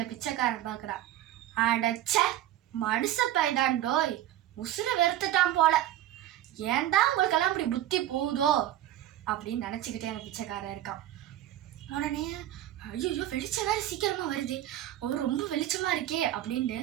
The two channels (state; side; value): quieter; left; 13.1 dB